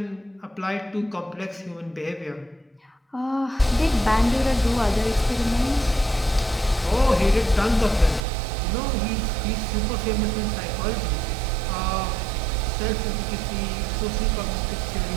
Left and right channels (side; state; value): left; drops out; at 8.2 s